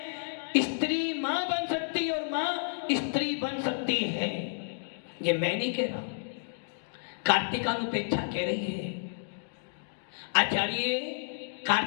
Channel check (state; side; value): silent; right; digital silence